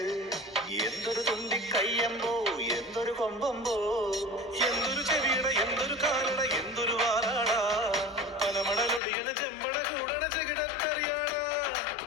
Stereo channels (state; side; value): drops out; right; at 9.0 s